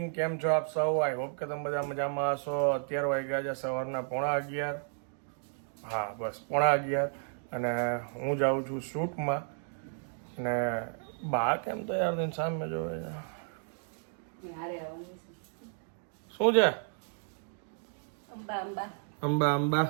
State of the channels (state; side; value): silent; left; digital silence